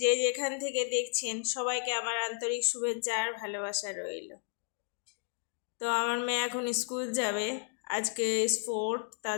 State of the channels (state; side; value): silent; right; 56 dB below the other